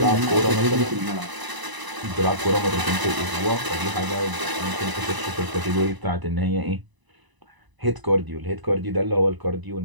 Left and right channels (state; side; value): late; left; 1.0 ms